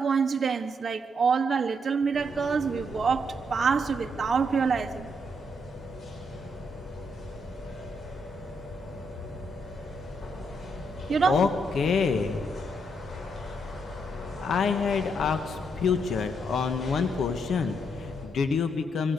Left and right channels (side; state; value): both; normal; correlation 0.76